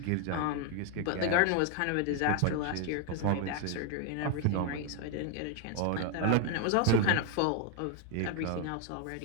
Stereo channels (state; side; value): different; both; correlation 0.01